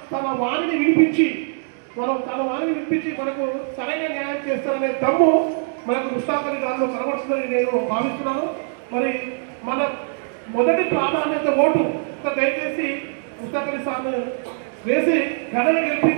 తన వాణిని వినిపించి మనకు సరైన న్యాయం చేస్తారనే దమ్ము మనకు ముస్తాక్ అలీ గారిలో కనబడుతుందని నేను భావిస్తున్నాను. మరి మన మొదటి ప్రాధాన్యత ఓటు దయచేసి ముస్తాక్ అలీ సార్ను వేసి ఘనన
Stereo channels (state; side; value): silent; left; 57 dB below the other